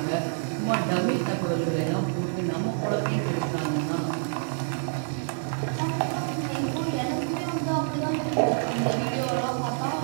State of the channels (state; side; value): silent; left; 60 dB below the other